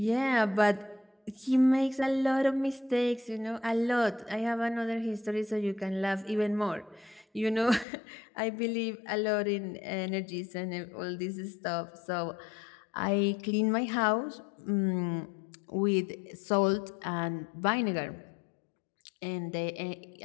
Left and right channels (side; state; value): right; drops out; at 7.9 s